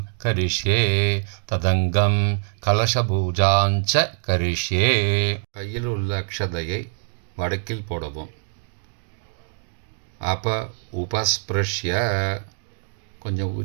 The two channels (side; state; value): left; silent; digital silence